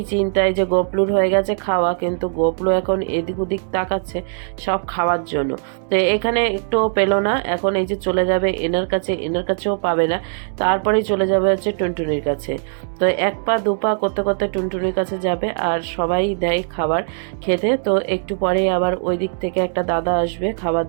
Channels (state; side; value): silent; left; 66 dB below the other